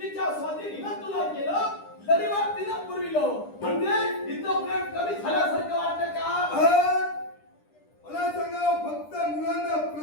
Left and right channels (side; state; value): right; late; 10 ms